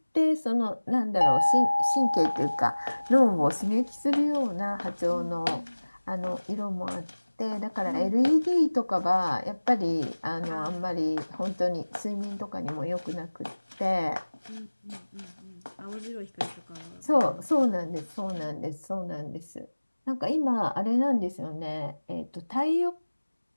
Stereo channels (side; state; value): both; inverted; correlation -1.00